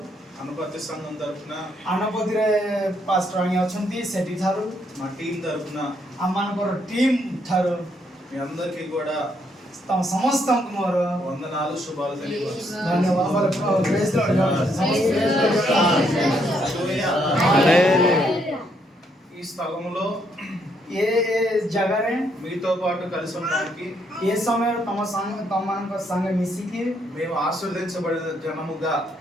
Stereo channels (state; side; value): normal; both; correlation 0.73